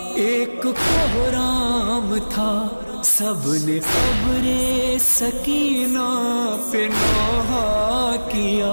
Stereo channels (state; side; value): inverted; both; correlation -1.00